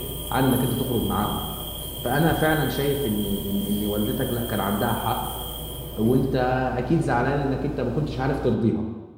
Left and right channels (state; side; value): identical; both; correlation 1.00